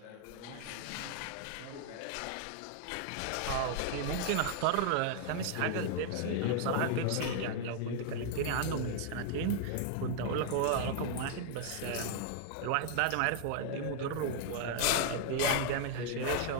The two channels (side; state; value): both; different; correlation 0.00